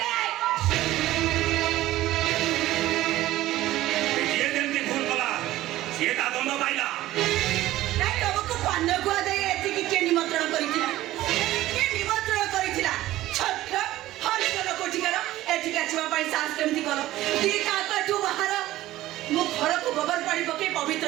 ଯିଏ ଯେମିତି ଭୁଲ କଲା ସିଏ ତା ଦଣ୍ଡ ପାଇଲା। ନାଇଁ, ତମକୁ ପାନ ଗୁଆ ଦେଇ ଏତିକି କିଏ ନିମନ୍ତ୍ରଣ କରିଥିଲା? କିଏ ନିମନ୍ତ୍ରଣ କରିଥିଲା? ଛତ୍ର ହରିଜନ କୋଠିକାର ଏଠିକି ଆସିବା ପାଇଁ ସାହସ କେମିତି କର? ଦିଟା କାଠୁ ବାହାର, ମୁଁ ଘରକୁ ଗୋବର ପାଣି ପକେଇ ପବିତ୍ର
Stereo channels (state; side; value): quieter; left; 15.6 dB